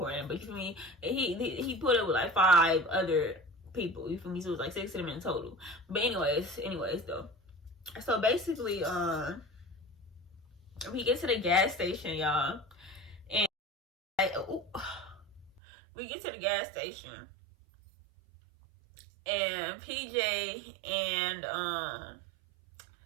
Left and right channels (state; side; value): drops out; left; at 15.6 s